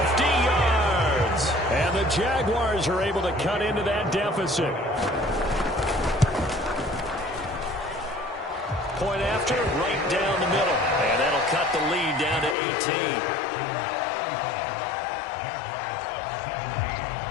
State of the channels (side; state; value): right; drops out; at 12.6 s